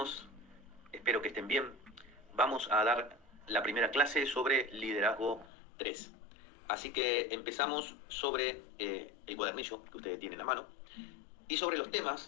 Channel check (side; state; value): right; drops out; at 5.5 s